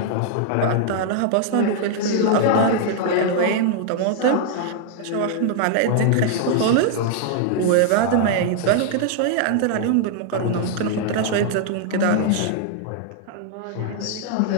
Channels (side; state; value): both; different; correlation 0.00